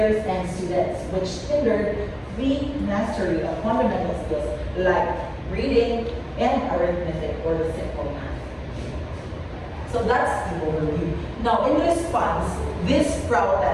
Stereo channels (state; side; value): identical; both; correlation 1.00